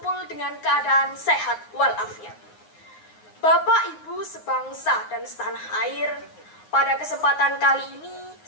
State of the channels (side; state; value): right; late; 9.6 ms